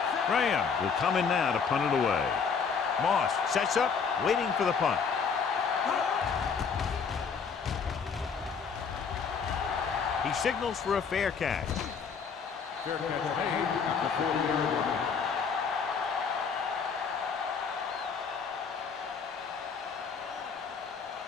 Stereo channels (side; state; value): right; quieter; 5.9 dB